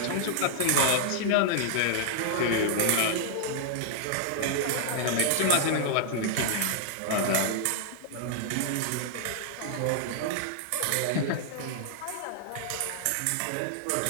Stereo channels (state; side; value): different; both; correlation -0.01